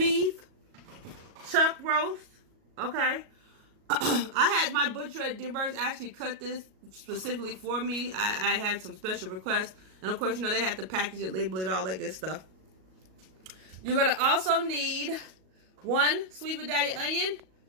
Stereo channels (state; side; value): late; left; 38 ms